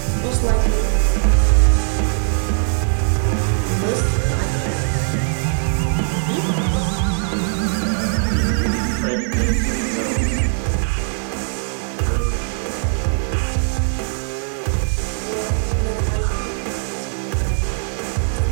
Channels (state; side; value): silent; left; 66 dB below the other